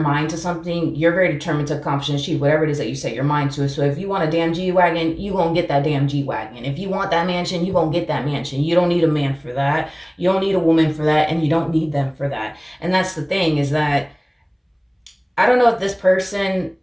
to something, you're very determined to accomplish and achieve whatever it is that you set your mind to. So if you want a damn G-Wagon, you gonna get that damn G-Wagon. If you want that mansion, you gonna get that mansion. You don't need a man for that. You don't need a woman for that, and you don't need them for that. And that's the thing, is that I don't know if this person,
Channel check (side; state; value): both; identical; correlation 1.00